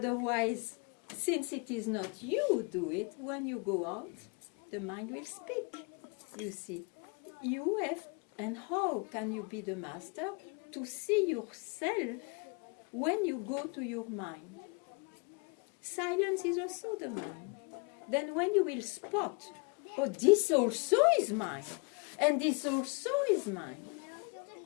since it is not you who do it, when you go out, the mind will speak. You see, you have, and how can you be the master? To see yourself when you go to your mind. Silence is also the mind. Then when you will spot, oh, this also is mine, and this also is mine,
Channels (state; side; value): quieter; right; 32.7 dB